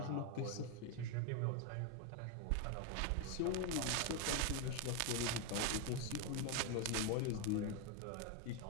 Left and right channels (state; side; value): different; both; correlation 0.01